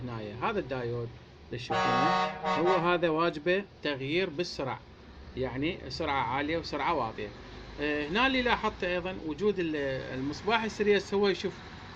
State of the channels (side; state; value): both; identical; correlation 1.00